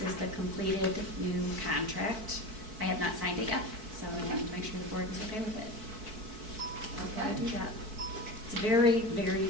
is the completed new contract. I have not signed it yet, so I wanted to make sure the board was okay with it. Okay, do that. It's very, very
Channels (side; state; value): left; late; 4.6 ms